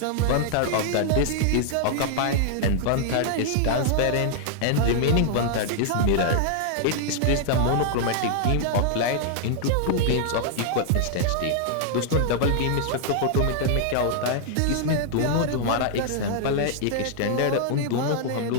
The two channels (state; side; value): different; both; correlation -0.01